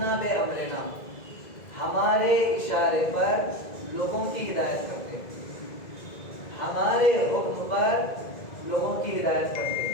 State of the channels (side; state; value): right; late; 2.0 ms